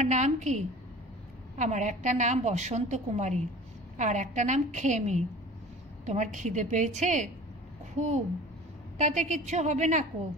নাম কি? আমার একটা নাম বসন্ত কুমারী, আর একটা নাম খেমি। তোমার খিদে পেয়েছে? খুব। তাতে কিচ্ছু হবে না কো,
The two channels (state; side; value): normal; both; correlation 0.41